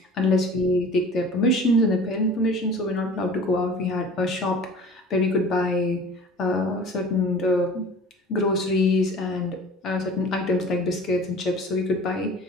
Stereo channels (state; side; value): normal; both; correlation 0.43